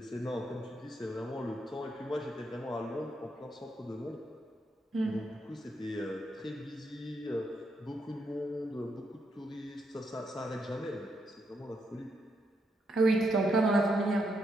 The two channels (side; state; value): both; normal; correlation 0.80